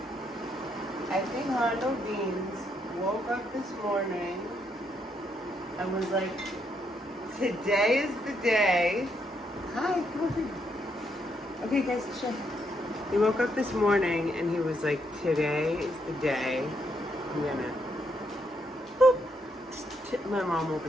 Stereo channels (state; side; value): normal; both; correlation 0.76